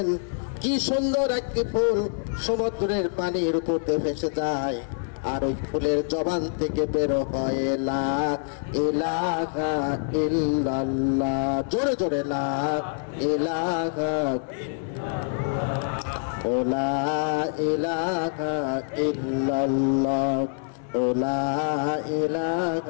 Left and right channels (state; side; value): silent; right; 61 dB below the other